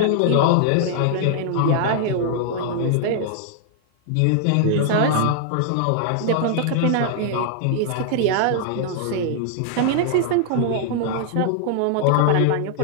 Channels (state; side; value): different; both; correlation -0.01